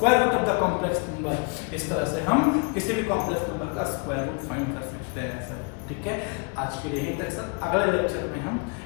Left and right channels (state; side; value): quieter; right; 32.7 dB